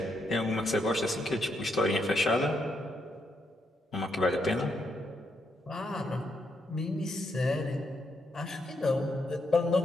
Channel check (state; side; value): normal; both; correlation 0.78